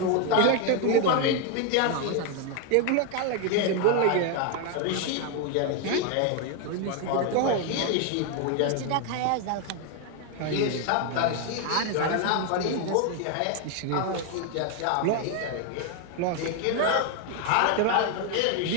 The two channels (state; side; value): different; both; correlation 0.01